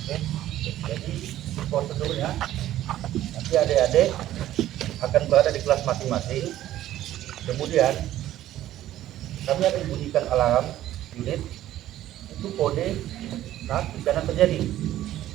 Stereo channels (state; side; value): quieter; left; 13.4 dB